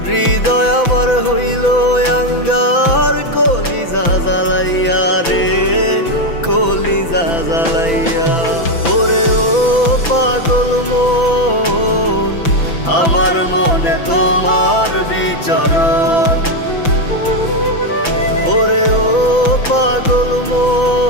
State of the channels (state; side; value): late; right; 6.0 ms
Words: হৃদয় আমার হইল আঙ্গার, কলিজা জ্বালাইয়া রে কলিজা জ্বালাইয়া। ওরে ও পাগল মন, আমার মনে তোমার বিচরণ। ওরে ও পাগল